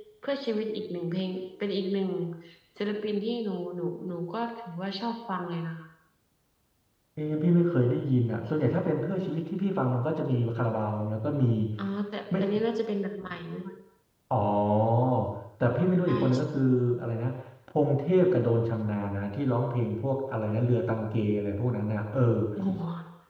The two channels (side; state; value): both; identical; correlation 1.00